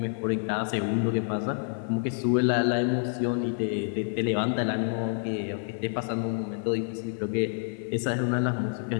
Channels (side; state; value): right; silent; 59 dB below the other